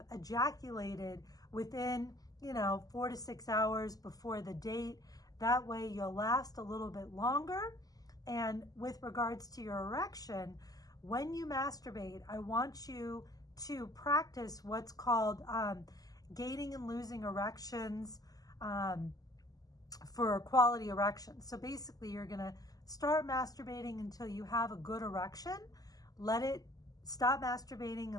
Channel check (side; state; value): right; late; 0.18 ms